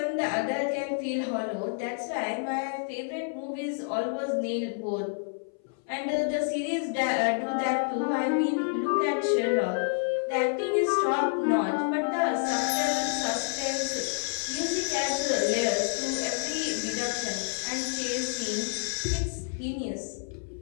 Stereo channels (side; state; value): right; silent; 59 dB below the other